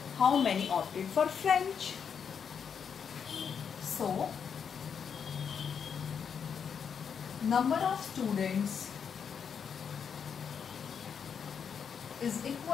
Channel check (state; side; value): quieter; right; 7.0 dB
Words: how many opted for French. So, number of students is